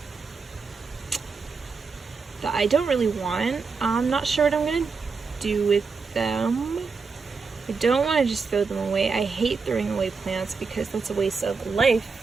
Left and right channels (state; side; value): quieter; left; 4.8 dB